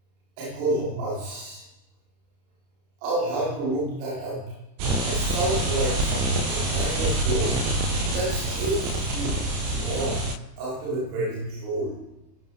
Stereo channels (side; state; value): left; late; 31 ms